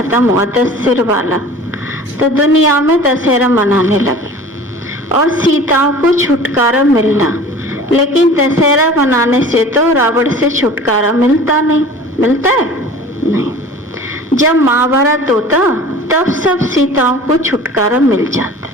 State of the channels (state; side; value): normal; both; correlation 0.42